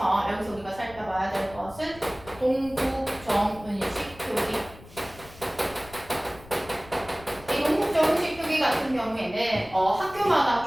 여기서 우리가 살펴봐야 될 것은 동국정은식 표기. 이 동국정은식 표기 같은 경우에는 학교마다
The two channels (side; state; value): left; noise; rumble, 19 dB below the sound